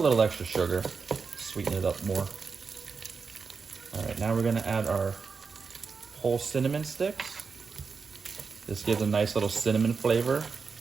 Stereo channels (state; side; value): quieter; left; 5.2 dB